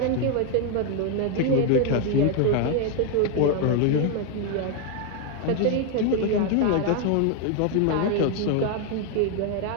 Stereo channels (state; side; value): different; both; correlation 0.01